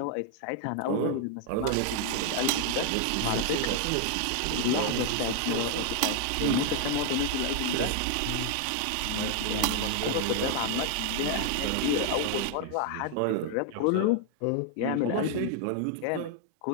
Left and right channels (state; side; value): different; both; correlation 0.00